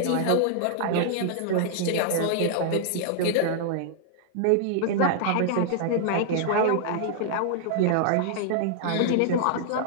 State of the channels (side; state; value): both; different; correlation -0.01